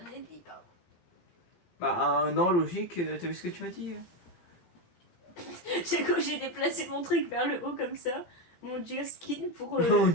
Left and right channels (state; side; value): late; right; 17 ms